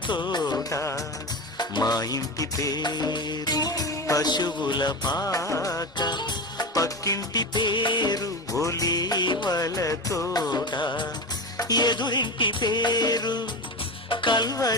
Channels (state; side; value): normal; both; correlation 0.23